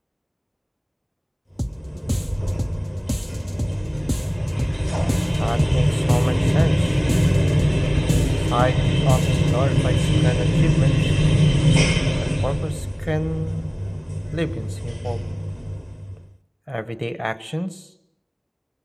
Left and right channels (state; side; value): identical; both; correlation 1.00